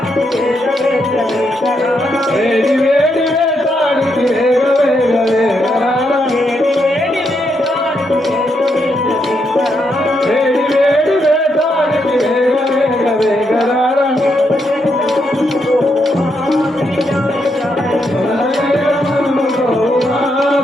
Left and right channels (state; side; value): normal; both; correlation 0.80